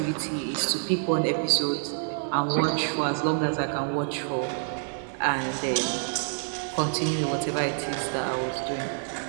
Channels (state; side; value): silent; left; 60 dB below the other